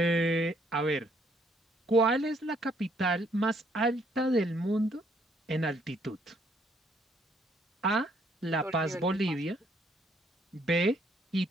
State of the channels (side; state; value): both; normal; correlation 0.68